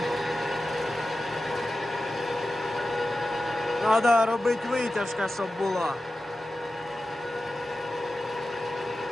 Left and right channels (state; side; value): normal; both; correlation 0.93